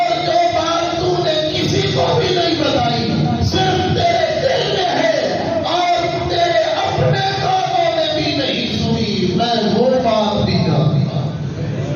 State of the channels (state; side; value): identical; both; correlation 1.00